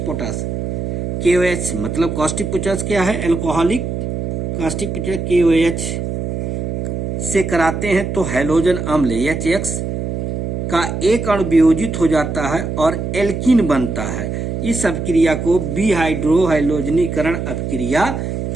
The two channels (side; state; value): right; noise; hum, 3 dB below the sound